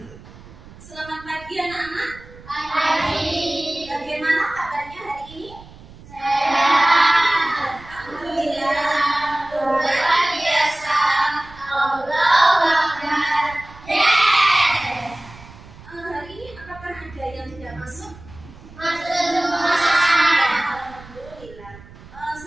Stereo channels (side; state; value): right; noise; rumble, 20 dB below the sound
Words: Selamat pagi anak-anak. Pagi. Bagaimana kabarnya hari ini? Sehat. Alhamdulillah. Luar biasa. Allahu Akbar. Yes. Hari ini apakah ada yang tidak masuk? Masuk semua. Alhamdulillah.